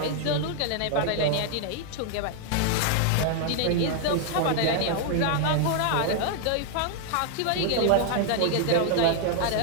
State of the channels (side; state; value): both; different; correlation 0.00